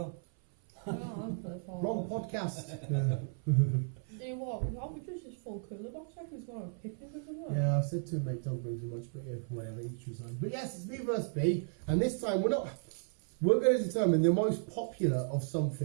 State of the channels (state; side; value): silent; left; 55 dB below the other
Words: I don't play Fallout. Wrong podcast. You know what? We thought we just this full cooler box like we was going on a picnic or something. Yeah, I said to him, mate, don't bring so much, but yeah, whatever, each was on. But yes, it's B versus B, and this time we're going to determine the most popular of